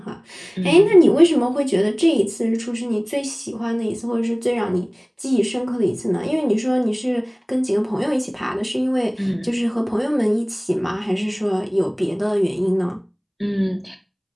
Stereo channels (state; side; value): identical; both; correlation 1.00